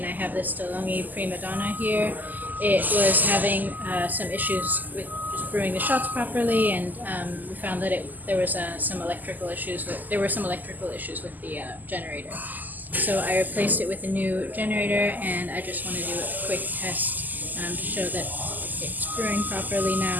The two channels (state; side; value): late; left; 0.084 ms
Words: I have this DeLonghi primadonna here. It was having some issues with just brewing the shots properly, and we found that there were some electrical issues with the generator. So I replaced it with a new generator, and I just want to do a quick test to show that it's brewing properly